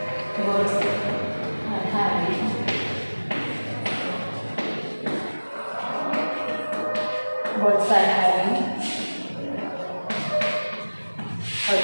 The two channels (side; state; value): both; inverted; correlation -1.00